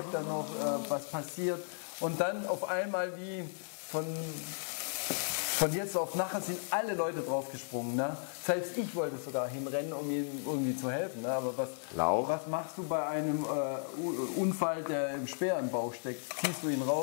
er noch, was passiert. Und dann auf einmal wie von jetzt auf nachher sind alle Leute draufgesprungen. Ne? Selbst ich wollte sogar hinrennen, um ihm irgendwie zu helfen. Ne? Aber was machst du bei einem Unfall, der im Speer im Bauch steckt? Ziehst du ihn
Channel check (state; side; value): silent; right; digital silence